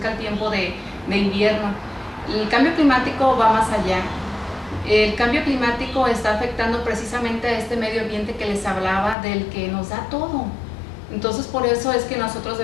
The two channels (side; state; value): right; drops out; at 9.2 s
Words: el tiempo de invierno. El cambio climático va más allá. El cambio climático está afectando precisamente a este medio ambiente que les hablaba, del que nos da todo. Entonces por eso es que nosotros